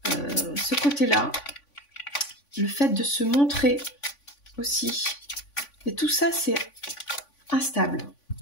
ce côté-là, le fait de se montrer aussi. Et tout ça, c'est instable,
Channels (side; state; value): right; late; 3.5 ms